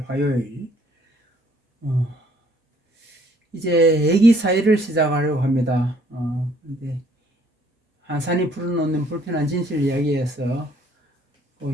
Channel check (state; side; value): normal; both; correlation 0.62